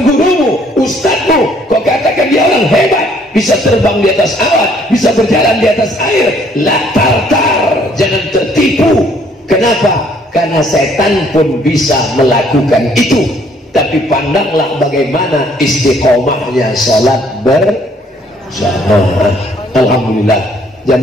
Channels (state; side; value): normal; both; correlation 0.63